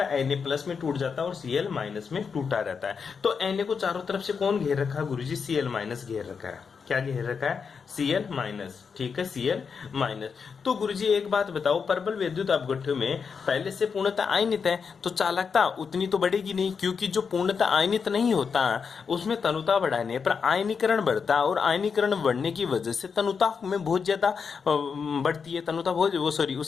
Na+ में टूट जाता है और Cl- में टूटा रहता है। तो Na को चारों तरफ से कौन घेर रखा है गुरुजी, Cl- घेर रखा है। क्या घेर रखा है, Cl-, ठीक है, Cl-। तो गुरुजी एक बात बताओ, परबल विद्युत अपघट्य में पहले से पूर्णतः आयनित है तो चालकता उतनी तो बढ़ेगी नहीं, क्योंकि जो पूर्णतः आयनित नहीं होता उसमें तनुता बढ़ाने पर आयनीकरण बढ़ता है, और आयनीकरण बढ़ने की वजह से तनुता में बहुत ज्यादा बढ़ती है, तनुता बहुत वो सॉरी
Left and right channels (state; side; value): quieter; right; 5.9 dB